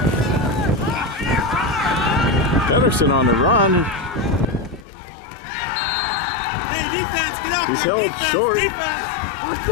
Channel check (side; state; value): right; drops out; at 4.9 s